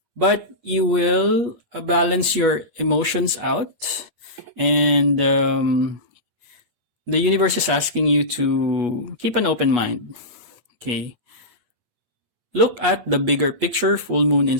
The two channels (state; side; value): late; left; 8.3 ms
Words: but you will balance your emotions out, and the universe is asking you to keep an open mind. Okay. Look at the bigger picture, full moon in